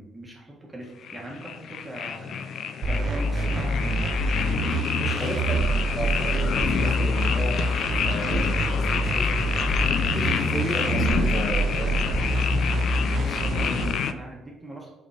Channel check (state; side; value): normal; both; correlation 0.73